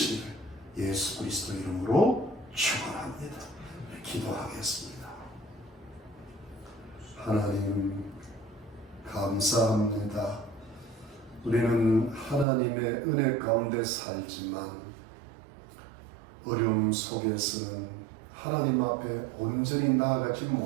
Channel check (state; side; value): drops out; left; at 12.5 s